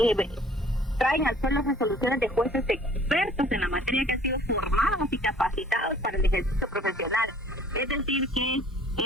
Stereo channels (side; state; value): both; normal; correlation 0.54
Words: traen al suelo resoluciones de jueces expertos en la materia, que han sido formados y capacitados para el ejercicio profesional. Es decir, que